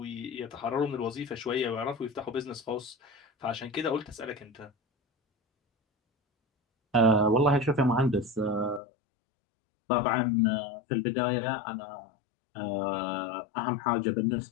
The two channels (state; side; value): drops out; right; at 8.8 s